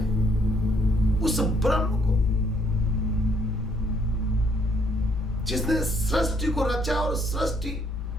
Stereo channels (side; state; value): both; normal; correlation 0.68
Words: उस ब्रह्म को, जिसने सृष्टि को रचा, और सृष्टि